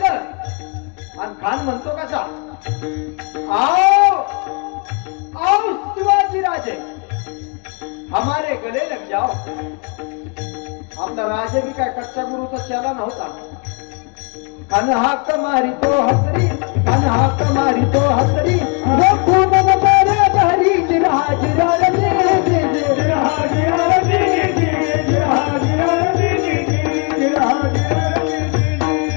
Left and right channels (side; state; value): right; quieter; 34.8 dB